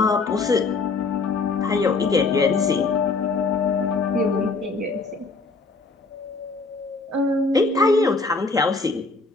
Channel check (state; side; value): quieter; right; 3.9 dB